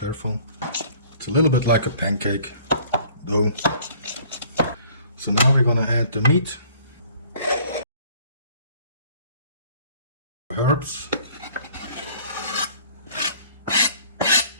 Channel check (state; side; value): inverted; both; correlation -0.55